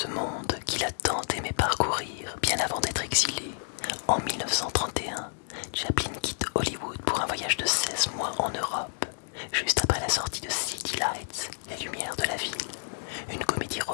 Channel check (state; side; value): silent; right; digital silence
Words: monde qu'il a tant aimé parcourir bien avant d'être exilé, en 1931, Chaplin quitte Hollywood pour un voyage de 16 mois en Europe, juste après la sortie de City Lights, Les Lumières de la Ville, une comédie